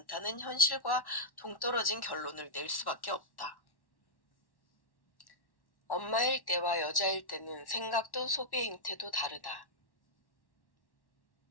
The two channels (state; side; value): late; right; 1.1 ms